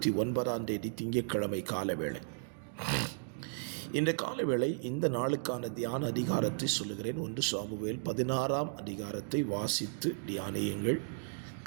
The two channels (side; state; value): left; silent; digital silence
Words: திங்கட்கிழமை காலவேளை. இந்த காலவேளை இந்த நாளுக்கான தியான அதிகாரத்தை சொல்லுகிறேன். 1 சாமுவேல் 16 அதிகாரத்தை வாசித்து தியானியுங்கள்.